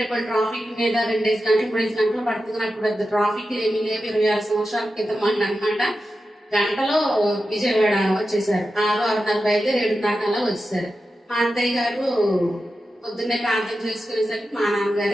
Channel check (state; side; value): normal; both; correlation 0.91